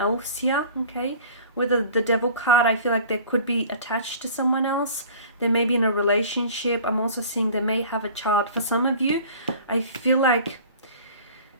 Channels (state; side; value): inverted; both; correlation -0.45